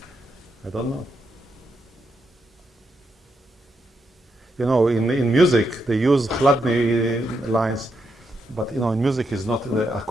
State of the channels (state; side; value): normal; both; correlation 0.81